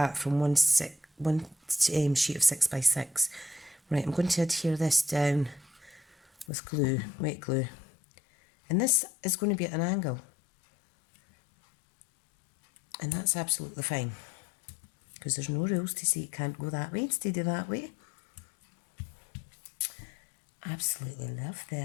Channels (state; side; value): drops out; right; at 6.5 s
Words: from one sheet of 6x6. Right, I'm going to adhere this down with glue, wet glue. And this is going to be at an angle. And that's absolutely fine, because there's no rules to say it can't go that way instead of that way. Absolutely love